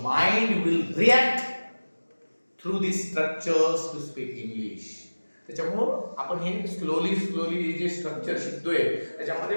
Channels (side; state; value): both; inverted; correlation -1.00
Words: mind will react through these structures to speak English. त्याच्यामुळं आपण हे स्लोली जे स्ट्रक्चर शिकतोय त्याच्यामध्ये